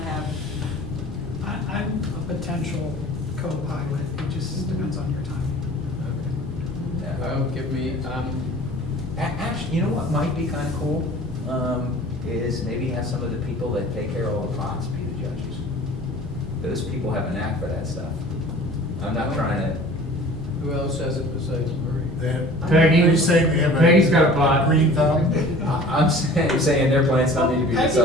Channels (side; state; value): both; normal; correlation 0.45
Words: I'm a potential co-pilot, it just depends on your time. Okay. Well, give me, Actually, you know what might be kinda cool, is maybe have some of the people that take care of all the pots be the judges. Those people have a knack for that stuff. I'm not trying to, who else has it besides Marie? Peggy, You say we have Peggy's got a pot. green thumb? I'm saying their plants don't need to be